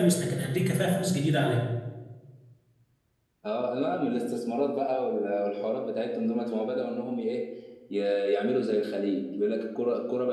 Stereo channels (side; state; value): both; identical; correlation 1.00